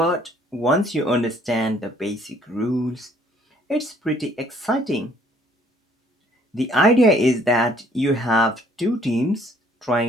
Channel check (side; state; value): both; normal; correlation 0.61